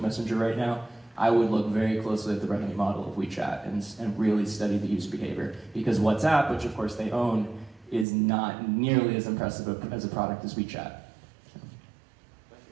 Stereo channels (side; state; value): left; drops out; at 8.1 s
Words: Messenger right now, I would look very closely at the revenue model of WeChat and really study the user behavior. Because WhatsApp, which of course they own, is not nearly as impressive as a product as WeChat.